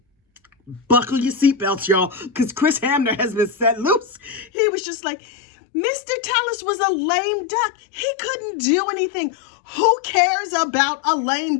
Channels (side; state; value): right; drops out; at 4.5 s